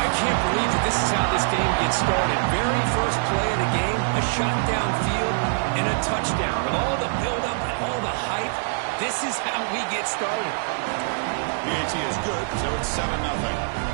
can't believe that this is how this game gets started. Very first play of the game, a shot downfield and a touchdown. With all the buildup and all the hype, this is how we get started. PAT is good, so it's 7-0.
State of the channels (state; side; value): silent; left; digital silence